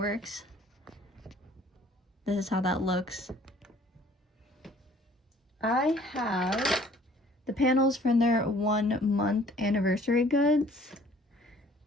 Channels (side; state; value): both; normal; correlation 0.56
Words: This is how that looks. I have the panels from their 1-month anniversary goods.